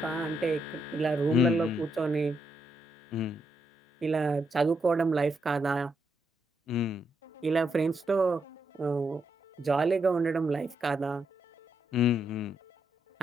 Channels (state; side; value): normal; both; correlation 0.80